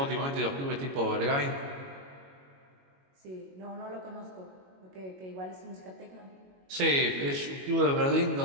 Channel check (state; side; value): late; left; 22 ms